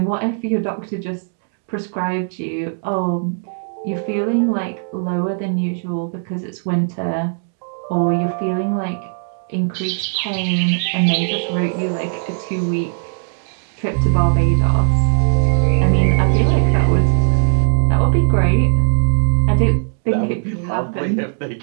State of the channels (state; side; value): silent; left; digital silence